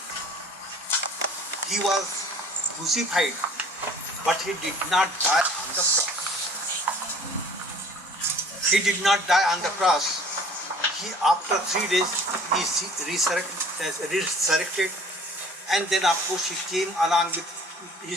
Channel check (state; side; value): normal; both; correlation 0.50